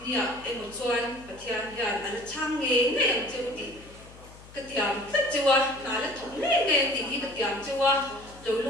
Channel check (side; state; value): left; noise; hum, 20 dB below the sound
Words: nia em một chuan bát thiên hiền anh chang nghe em chưa đi cái tiệm tất chưa nãy là thống nghe em đi cái tiệm chưa rồi